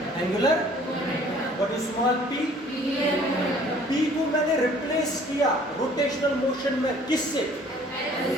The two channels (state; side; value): normal; both; correlation 0.54